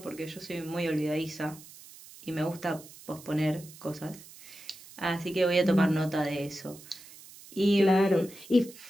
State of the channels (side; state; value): right; noise; hiss, 19 dB below the sound